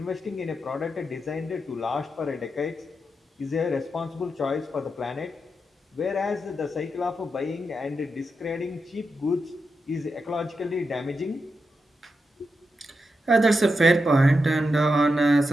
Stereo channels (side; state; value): both; normal; correlation 0.87